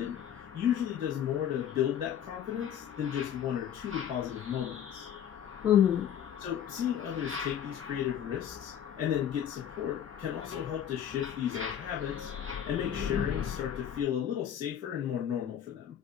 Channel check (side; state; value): right; quieter; 9.5 dB